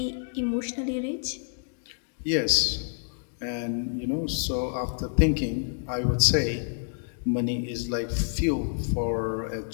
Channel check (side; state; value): right; silent; digital silence